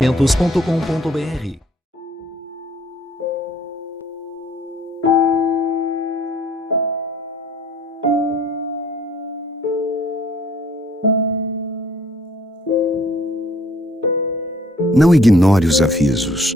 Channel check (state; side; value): normal; both; correlation 0.59